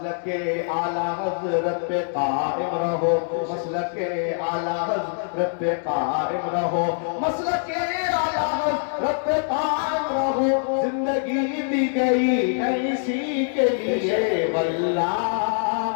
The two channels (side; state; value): right; silent; digital silence